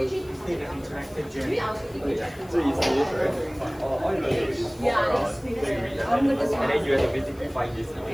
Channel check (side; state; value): left; noise; hiss, 25 dB below the sound